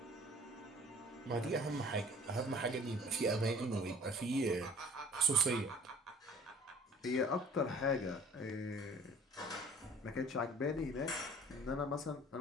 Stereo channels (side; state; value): both; normal; correlation 0.50